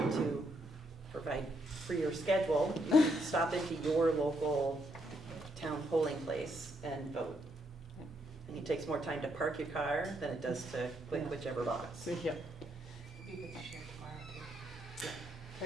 to provide for your schedule, stop into your local town polling place and vote. And it takes more time to park your car than it does to click whichever box. Yeah. You could share tomorrow too.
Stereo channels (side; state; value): both; normal; correlation 0.75